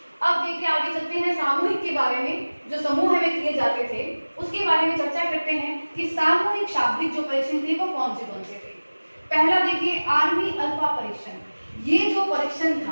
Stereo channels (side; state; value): both; inverted; correlation -1.00